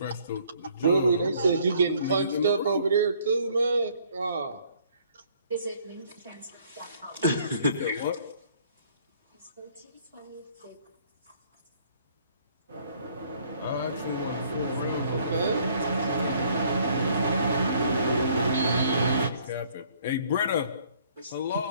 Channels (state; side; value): inverted; both; correlation -0.61